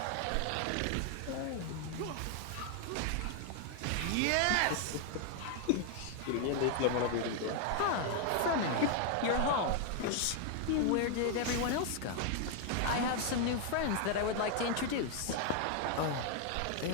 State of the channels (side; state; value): both; different; correlation 0.00